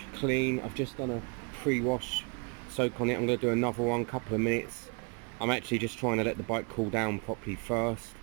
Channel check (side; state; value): left; quieter; 34.1 dB